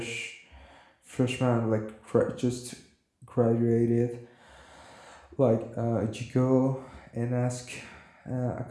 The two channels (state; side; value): identical; both; correlation 1.00